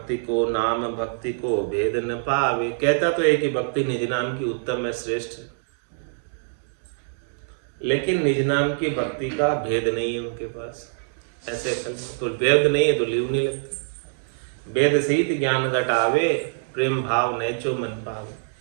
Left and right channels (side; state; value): left; silent; digital silence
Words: को नाम भक्ति को भेद न पावे, कहता तो है कि भक्ति निज नाम की उत्तम है, श्रेष्ठ है, लेकिन निज नाम की भक्ति का भेद नहीं है उनके पास। ऐसे तो भेद नहीं है तो लीव नहीं लगती। वेद सहित ज्ञान घटावे, प्रेम भाव नैचो मन पावे,